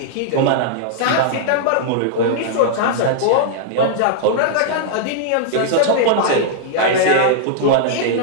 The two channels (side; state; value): both; different; correlation -0.01